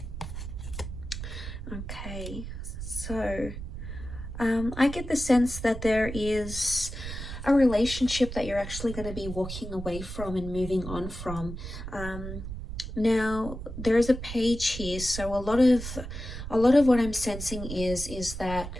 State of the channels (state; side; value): noise; right; rumble, 8 dB below the sound